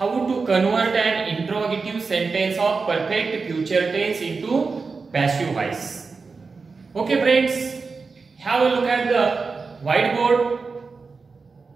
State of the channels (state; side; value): quieter; left; 4.5 dB